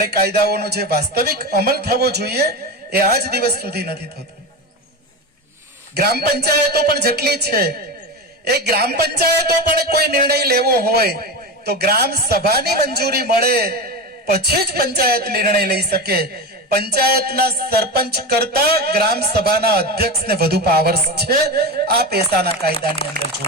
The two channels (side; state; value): both; normal; correlation 0.21